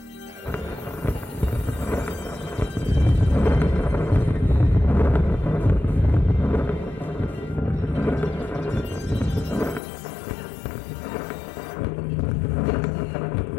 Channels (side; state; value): right; drops out; at 9.8 s